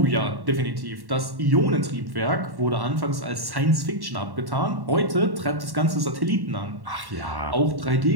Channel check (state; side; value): late; left; 1.1 ms